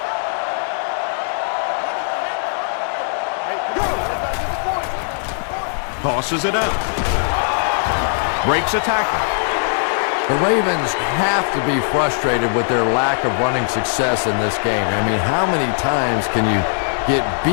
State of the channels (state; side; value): silent; right; 66 dB below the other